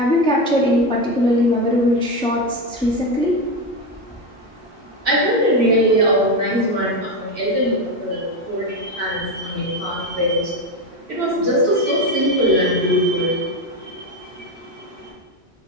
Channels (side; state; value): both; normal; correlation 0.15